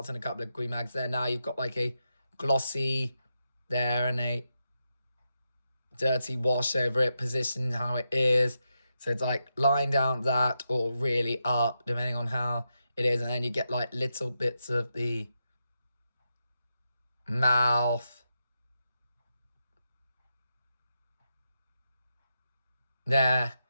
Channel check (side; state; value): both; inverted; correlation -0.86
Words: and a couple of green mags there. Now you've got like a glossy there and a dirty wash over it, positioned how it is. So it's like lying down that or really up, depending on how it is. And then you get like little bits of the mouth there.